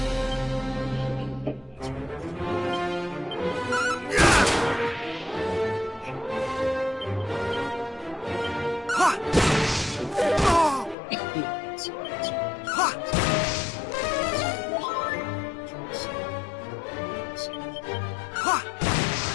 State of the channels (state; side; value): drops out; right; at 11.0 s